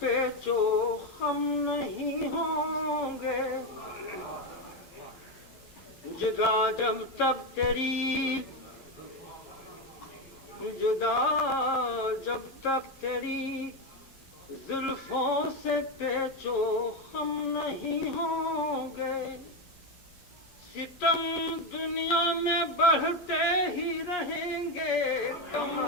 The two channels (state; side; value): late; right; 11 ms